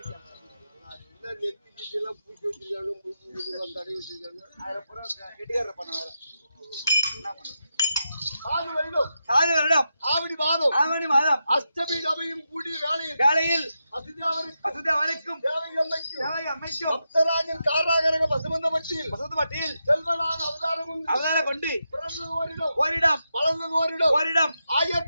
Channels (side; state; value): both; inverted; correlation -0.87